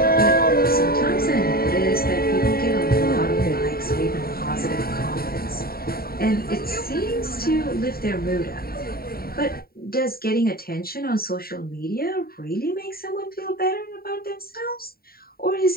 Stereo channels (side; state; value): right; late; 0.43 ms